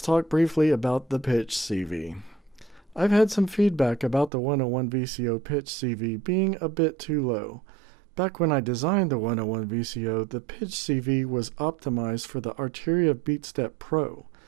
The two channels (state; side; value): drops out; left; at 4.3 s